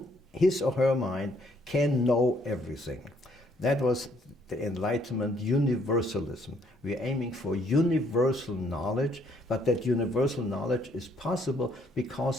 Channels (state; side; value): normal; both; correlation 0.67